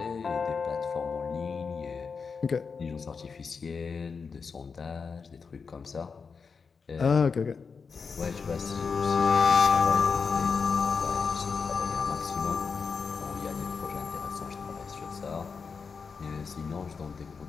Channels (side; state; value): right; quieter; 5.3 dB